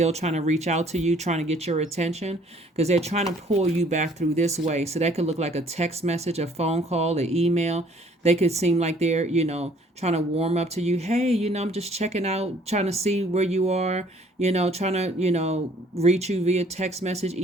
trying to reach out to you, trying to get your attention because they're trying to pull you back through this way. So that could look like a text message, a phone call, an email. They could seem like they're, trying to warm up to you. Hey, I'm just checking out, trying to see where you are, trying to, reach you via text message,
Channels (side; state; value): both; normal; correlation 0.59